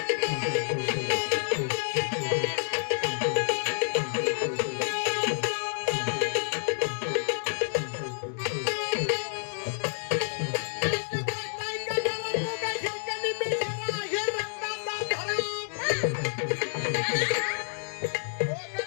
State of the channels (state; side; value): silent; right; digital silence